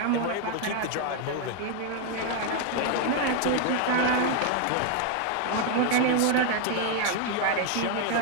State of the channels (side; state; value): both; different; correlation 0.00